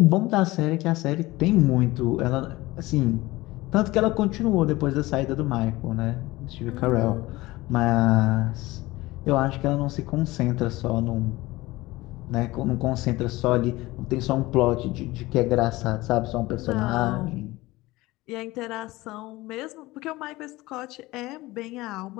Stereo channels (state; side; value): quieter; right; 19.6 dB